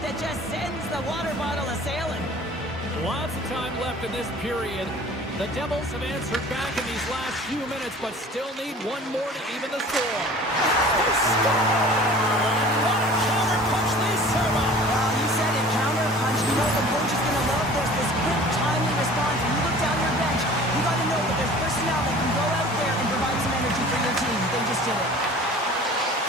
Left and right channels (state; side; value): normal; both; correlation 0.45